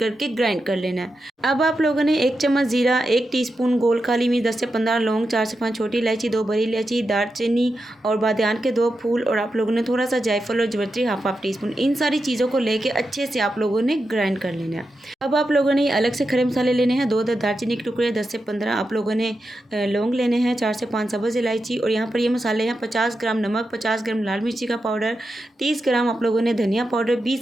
ग्राइंड कर लेना है। अब आप लोगों ने 1 चम्मच जीरा, 1 टीस्पून गोल काली मिर्च, 10 से 15 लौंग, 4 से 5 छोटी इलायची, 2 बड़ी इलायची, दालचीनी और बादियान के 2 फूल, और आप लोगों ने थोड़ा सा जायफल और जवित्री हाफ टी स्पून, इन सारी चीज़ों को लेके अच्छे से आप लोगों ने ग्राइंड कर लेना है। अब आप लोगों ने अलग से खड़े मसाले लेने हैं। 2 दालचीनी के टुकड़े, 10 से 15 आप लोगों ने लौंग लेने हैं, 4 से 5 सब्ज़ इलायची, और यहाँ पर ये मसाले हैं 50 ग्राम नमक, 50 ग्राम लाल मिर्ची का पाउडर, 30 ग्राम आप लोगों ने धनिया पाउडर,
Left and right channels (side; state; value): both; normal; correlation 0.88